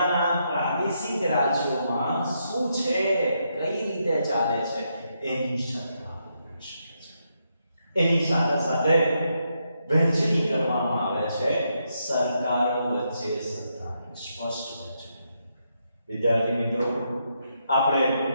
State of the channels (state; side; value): inverted; both; correlation -0.80